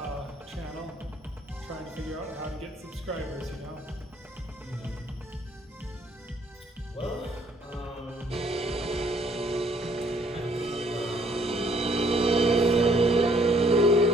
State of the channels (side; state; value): both; normal; correlation 0.64